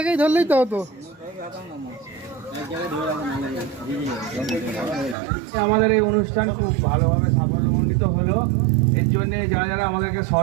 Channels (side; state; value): left; drops out; at 5.2 s